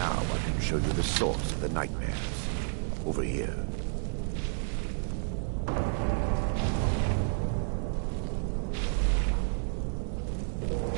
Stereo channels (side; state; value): left; silent; digital silence